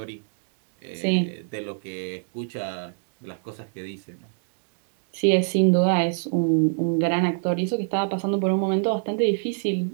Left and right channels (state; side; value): silent; left; digital silence